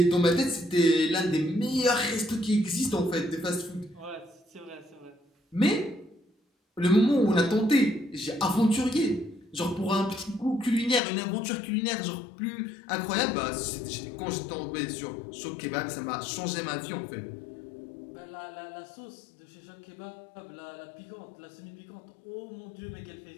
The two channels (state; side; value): drops out; right; at 11.0 s